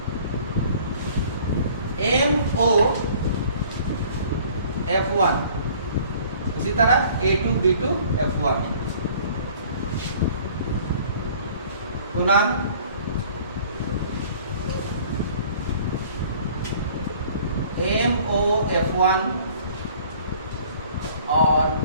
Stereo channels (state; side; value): inverted; both; correlation -0.52